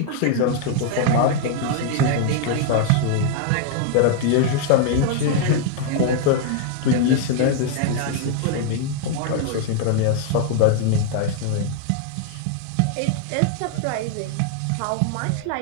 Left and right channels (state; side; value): different; both; correlation 0.00